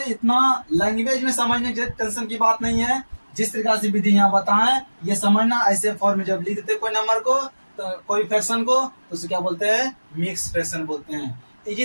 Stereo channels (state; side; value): inverted; both; correlation -1.00